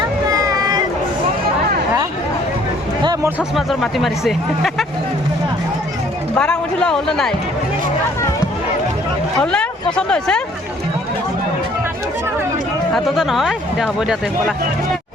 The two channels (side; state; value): both; normal; correlation 0.59